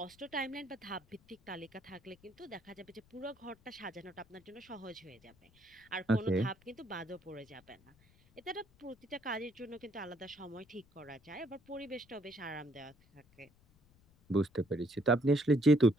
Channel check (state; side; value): noise; left; rumble, 29 dB below the sound